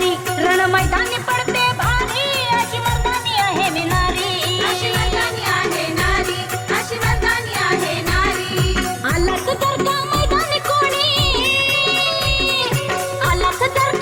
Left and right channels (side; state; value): both; identical; correlation 1.00